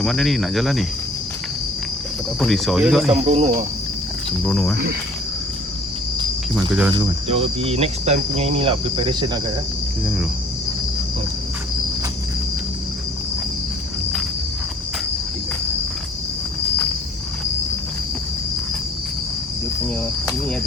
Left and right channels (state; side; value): normal; both; correlation 0.54